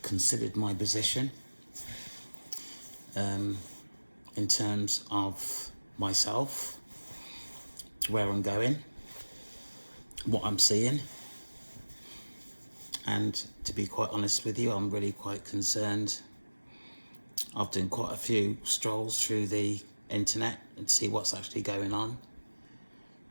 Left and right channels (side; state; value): both; inverted; correlation -1.00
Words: considered my position in terms of myself, where I'm going, what I'm seeing. And to be quite honest with you, I'm really quite concerned. I've done quite a few strolls through the internet and see what's actually going on.